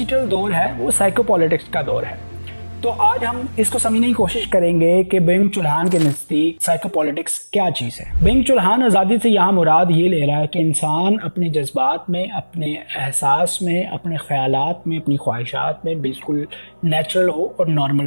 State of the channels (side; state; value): both; inverted; correlation -1.00